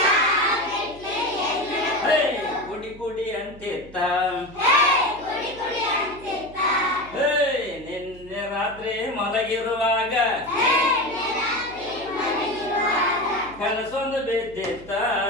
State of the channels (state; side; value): noise; right; hum, 19 dB below the sound